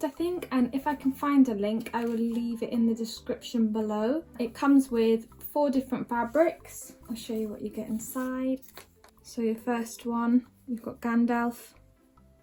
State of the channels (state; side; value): identical; both; correlation 1.00